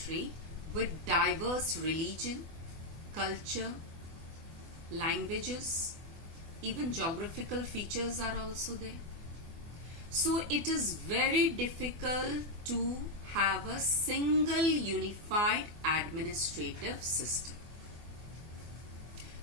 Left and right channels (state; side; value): late; left; 24 ms